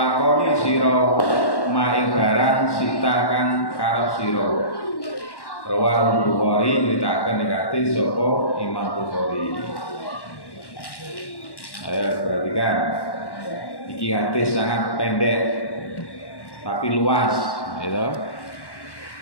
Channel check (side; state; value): right; late; 1.1 ms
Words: sira maing barang sita kang karep sira. Rawahul Bukhari nyeritakan negatif sapa Imam Bukhari. Ayo perhatikan, iki hadis sangat pendek tapi luas, gitu.